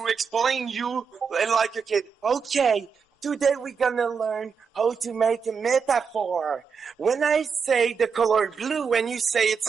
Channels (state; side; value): quieter; left; 6.0 dB